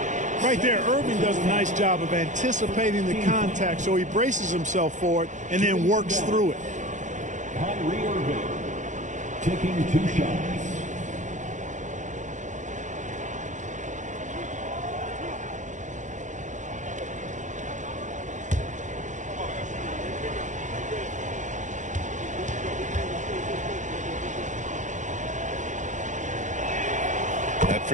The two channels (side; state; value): left; late; 0.36 ms